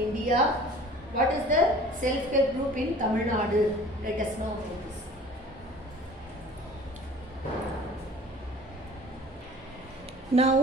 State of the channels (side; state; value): both; normal; correlation 0.46